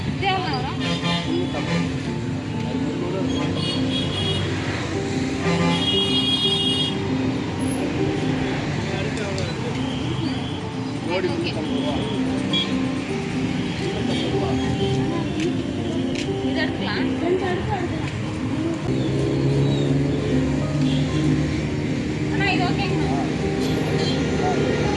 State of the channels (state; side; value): identical; both; correlation 1.00